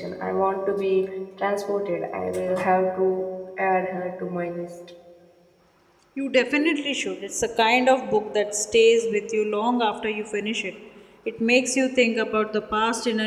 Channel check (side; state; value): both; identical; correlation 1.00